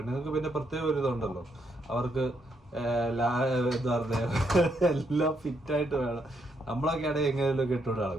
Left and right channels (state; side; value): normal; both; correlation 0.77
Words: പിന്നെ പ്രത്യേക ഒരു ഇതുണ്ടല്ലോ, അവർക്ക് എന്താ പറയുക എല്ലാം ഫിറ്റ് ആയിട്ട് വേണം. നമ്മളൊക്കെ ആണെങ്കിൽ എങ്ങനെയൊക്കെ ഇട്ടോണ്ട്